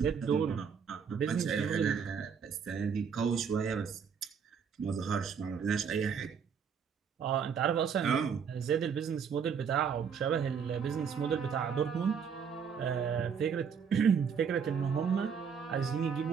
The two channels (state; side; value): quieter; left; 6.7 dB